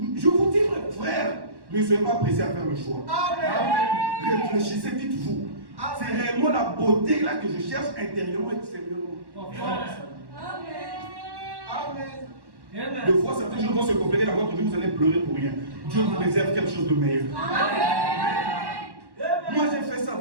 vous dis, frère, ne soyez pas pressés à faire le choix. Amen. Réfléchissez, dites-vous. C'est réellement la beauté là que je cherche intérieurement et extérieurement. Amen. Deux fois, certaines choses vont se compliquer dans votre vie, vous allez pleurer pour rien. Dieu vous réserve quelque chose de meilleur. Moi, j'ai fait ça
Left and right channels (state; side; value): late; left; 1.1 ms